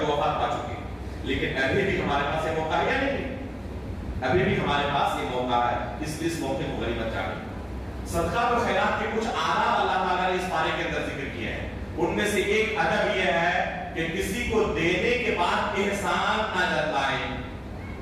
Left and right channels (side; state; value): both; identical; correlation 1.00